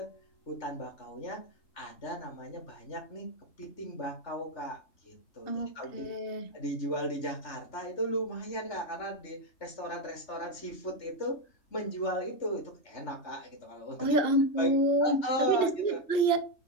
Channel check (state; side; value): late; right; 3.4 ms